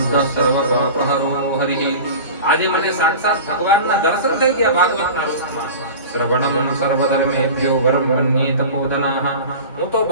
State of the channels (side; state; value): both; inverted; correlation -0.34